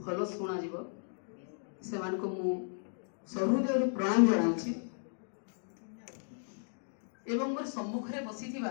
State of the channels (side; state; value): right; silent; digital silence